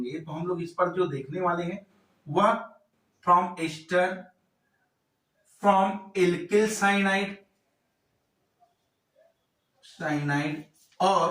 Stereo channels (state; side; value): identical; both; correlation 1.00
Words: तो हम लोग इस पर जो देखने वाले हैं वह from ester, from alkyl cyanide